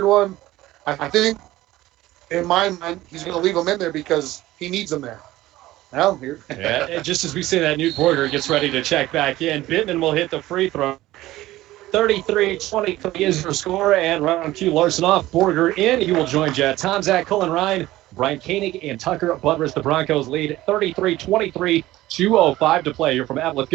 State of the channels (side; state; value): left; quieter; 16.5 dB